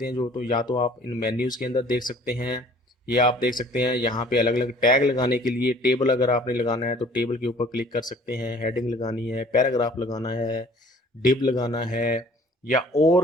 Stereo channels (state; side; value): normal; both; correlation 0.53